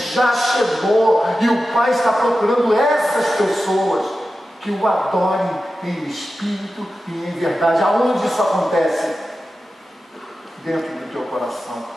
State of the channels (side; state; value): both; normal; correlation 0.93